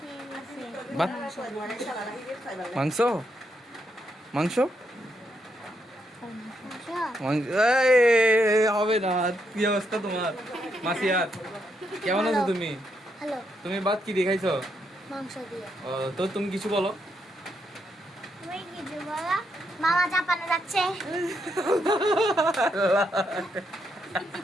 গেছে। ভাত, মাংস, মাংস, আসো। মাংস। এই, হবে না। কি অবস্থা তোমার? মাসিয়ার কেমন আছো তুমি? হ্যালো, তুমি ভাত কি দিয়ে খাইছো? মাংস দিয়ে। তো তুমি কিছু বলো। তুমি কিছু বলো। মামা জাপানে যাচ্ছে।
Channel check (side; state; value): both; normal; correlation 0.79